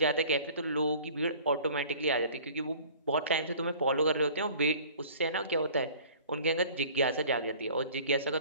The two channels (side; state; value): both; inverted; correlation -0.48